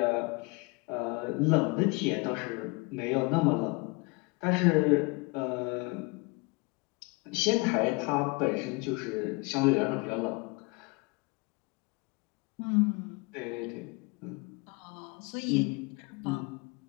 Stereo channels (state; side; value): quieter; right; 27.5 dB